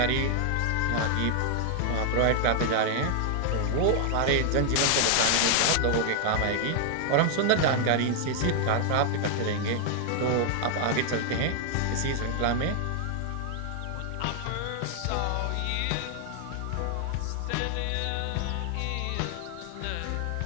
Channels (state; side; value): different; both; correlation 0.00